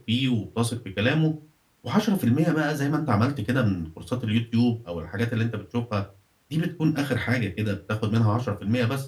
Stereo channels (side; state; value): both; identical; correlation 1.00